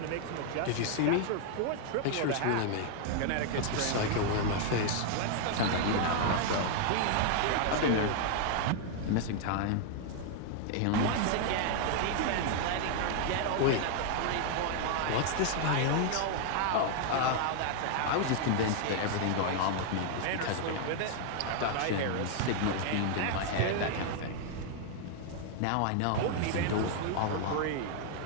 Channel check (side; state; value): both; different; correlation 0.00